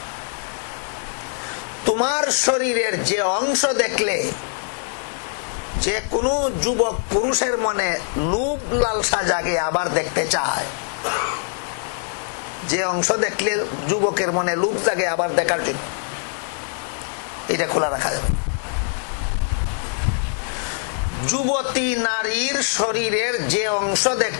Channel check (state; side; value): silent; right; 64 dB below the other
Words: তোমার শরীরের যে অংশ দেখলে যে কোনো যুবক পুরুষের মনে লোভ লালসা জাগে, আবার দেখতে চায়, যে অংশ দেখলে যুবকের মনে লোভ জাগে আবার দেখার জন্য, এটা খোলা রাখা যাবে। যুবতী নারীর শরীরের যে অংশ